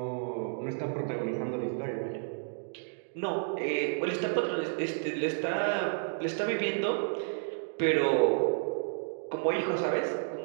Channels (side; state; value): left; silent; digital silence